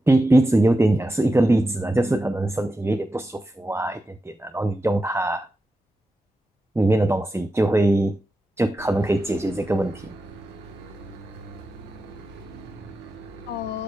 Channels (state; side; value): normal; both; correlation 0.91